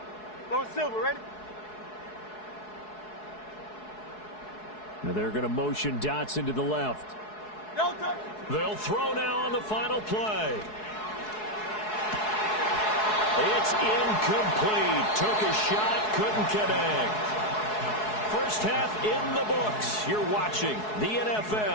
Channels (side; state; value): right; late; 4.7 ms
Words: Low silver, ready? Now they're going to motion Dotson to the left. They'll throw now on the final play. It's incomplete. Took a shot, couldn't connect. First half in the books. You're watching the